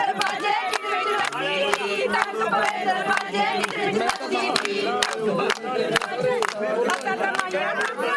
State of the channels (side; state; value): both; identical; correlation 1.00